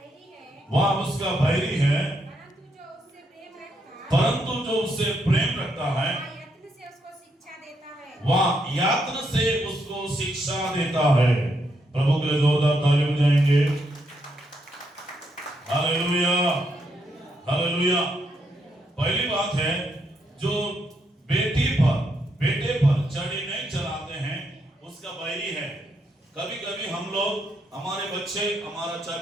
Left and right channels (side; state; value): both; normal; correlation 0.78